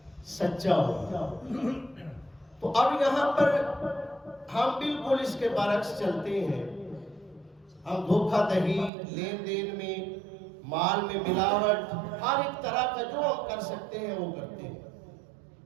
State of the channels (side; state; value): left; drops out; at 8.9 s